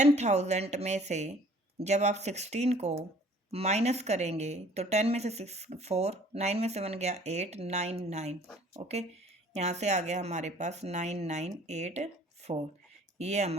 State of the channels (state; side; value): normal; both; correlation 0.54